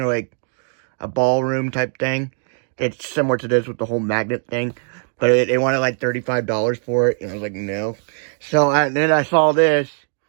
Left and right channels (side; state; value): left; silent; 55 dB below the other